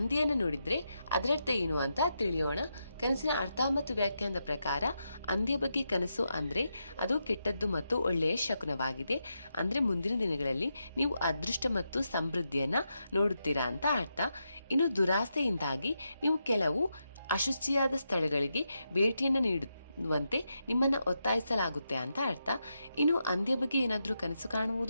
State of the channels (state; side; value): inverted; both; correlation -0.85